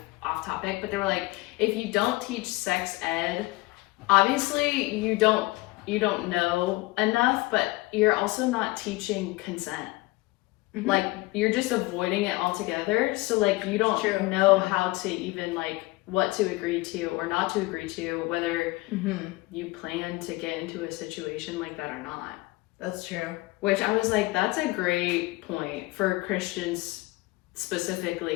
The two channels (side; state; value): right; quieter; 21.6 dB